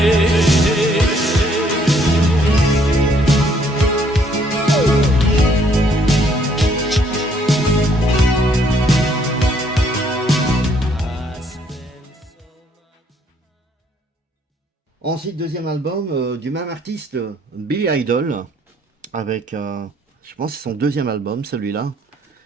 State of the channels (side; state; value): both; normal; correlation 0.66